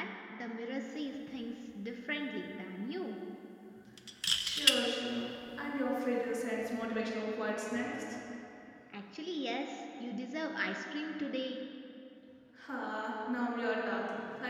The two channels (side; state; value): both; identical; correlation 1.00